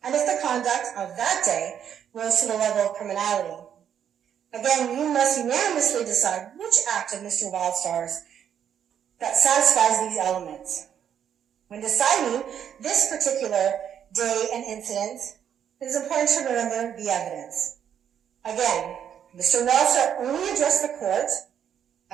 and if the conduct of that day rose to the level of criminality. Again, you must unanimously decide which act of Mr. Wildstar's that satisfies these elements. When deciding this particular day and incident, it is important to remember the evidence. Again, Mr. Wildstar only addressed the court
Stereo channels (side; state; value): left; quieter; 8.9 dB